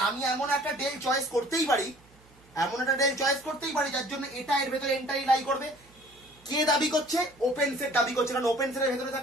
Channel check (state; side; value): noise; right; hum, 29 dB below the sound